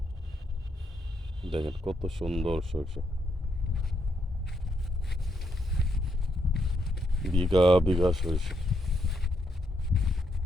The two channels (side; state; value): both; normal; correlation 0.78